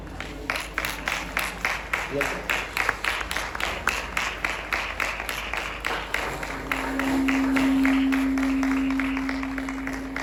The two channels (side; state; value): both; identical; correlation 1.00